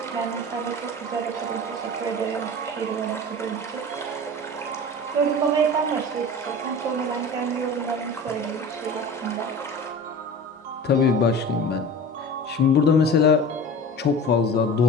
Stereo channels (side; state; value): both; normal; correlation 0.36